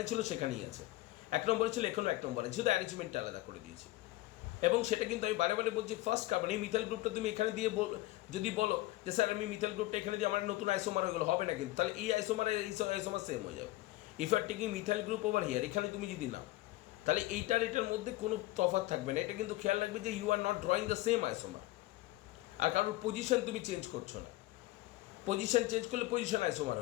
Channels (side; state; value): right; quieter; 18.1 dB